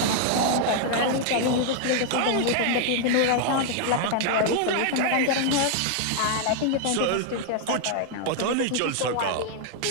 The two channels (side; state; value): both; different; correlation 0.00